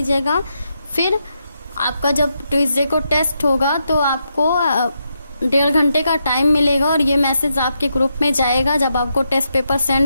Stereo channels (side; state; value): both; inverted; correlation -0.82